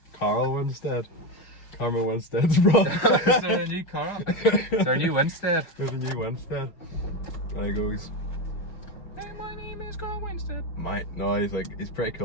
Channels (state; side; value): late; right; 5.8 ms